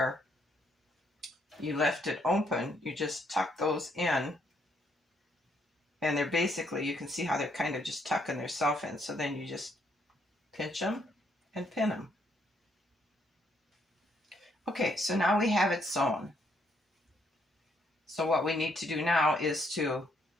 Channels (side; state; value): both; normal; correlation 0.72